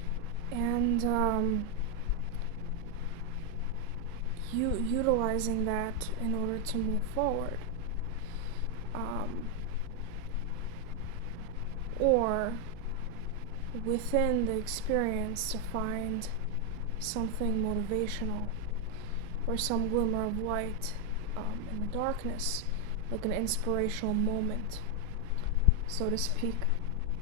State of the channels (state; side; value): normal; both; correlation 0.02